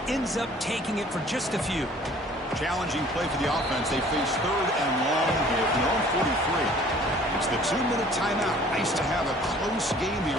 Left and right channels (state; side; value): normal; both; correlation 0.52